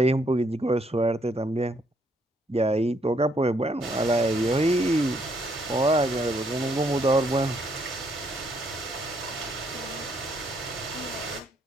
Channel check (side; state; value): both; normal; correlation 0.71